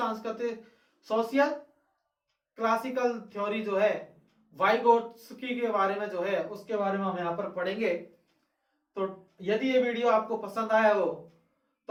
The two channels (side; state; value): both; identical; correlation 1.00